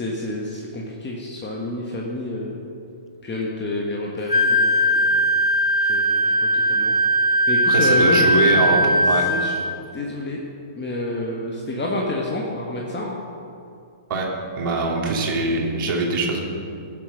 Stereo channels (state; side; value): inverted; both; correlation -0.44